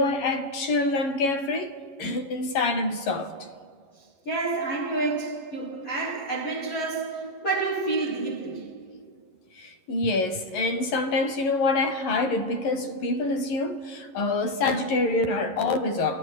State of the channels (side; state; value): right; late; 11 ms